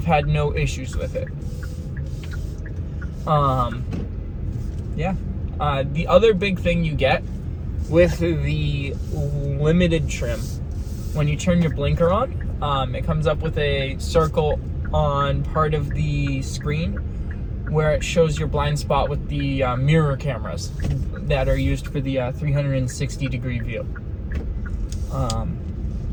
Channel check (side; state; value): both; identical; correlation 1.00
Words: had no issues with it. Yeah. The other big thing you get with the limited trim, when you turn your blinker on, it comes up with a circle on part of the screen where it shows your blind spot with the mirror cameras that are used for the 360 degree view.